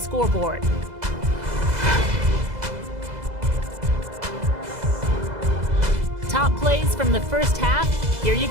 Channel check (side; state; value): left; late; 2.0 ms